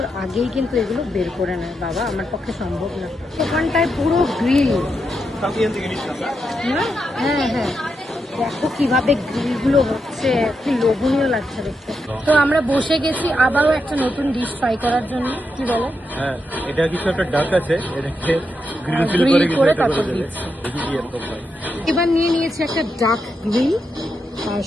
আগেই কিন্তু এগুলো বের করে নেয়। বাবা আমার পক্ষে সম্ভব না। ওখানটায় পুরো গ্রিল। হ্যাঁ হ্যাঁ, দেখো কিভাবে গ্রিলগুলো হচ্ছে, কি লোভনীয় লাগছে দেখতে। তো আমরা বসে গেছি আবারও একটা নতুন ডিশ ট্রাই করার জন্য। কি বলো? হ্যাঁ, এটা কিছু একটা ডাক আছে, এটাকে গ্রিল করে তারপর দিচ্ছি। এবার নিয়ে নিয়েছি একটা ডাক গ্রিল, আর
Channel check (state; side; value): normal; both; correlation 0.84